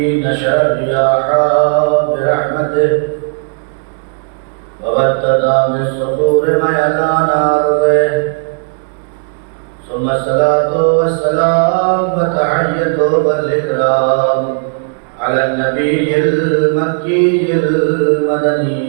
نشر الرياح برحمته وبدد من الصخور ميدان أرضه ثم الصلاة والسلام وتحية والإكرام على النبي المكي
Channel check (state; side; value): silent; left; digital silence